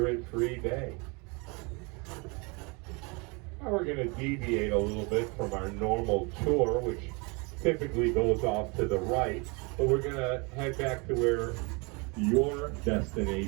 day. Now we're going to deviate a little bit from our normal tour, which typically goes off to the right, but we're going to head back to where your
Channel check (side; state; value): left; quieter; 29.6 dB